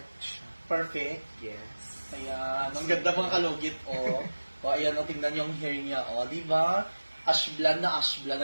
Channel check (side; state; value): both; inverted; correlation -1.00